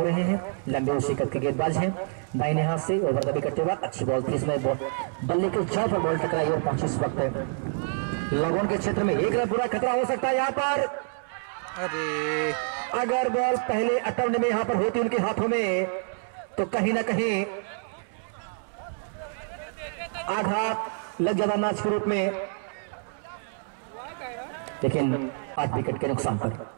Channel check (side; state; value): left; silent; 58 dB below the other